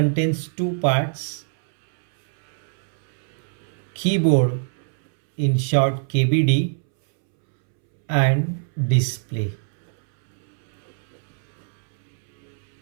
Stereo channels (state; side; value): silent; left; 64 dB below the other